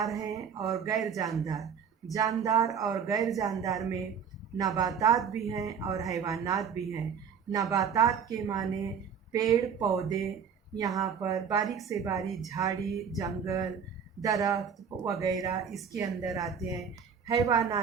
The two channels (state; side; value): quieter; left; 7.0 dB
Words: हैं और गैर जानदार। जानदार और गैर जानदार में नबातात भी हैं और हैवानात भी हैं। नबातात के माने पेड़ पौधे, यहाँ पर बारीक से बारीक झाड़ी जंगल दरख्त वगैरह इसके अंदर आते हैं।